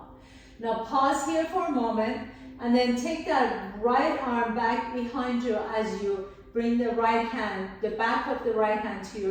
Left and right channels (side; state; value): both; identical; correlation 1.00